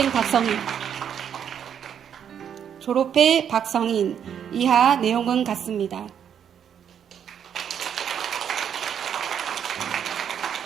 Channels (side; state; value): left; quieter; 8.6 dB